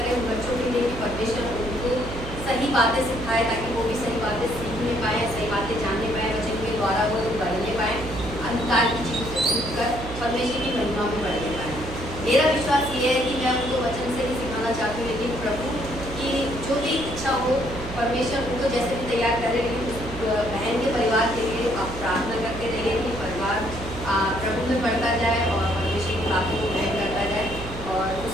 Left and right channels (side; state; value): right; noise; hum, 10 dB below the sound